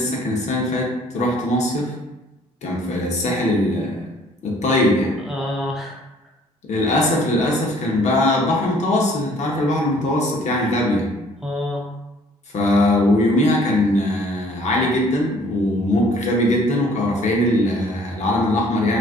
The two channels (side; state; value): both; normal; correlation 0.57